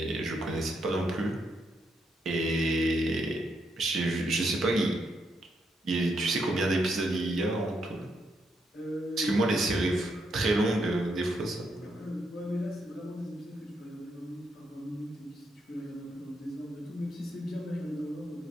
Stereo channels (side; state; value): both; normal; correlation 0.79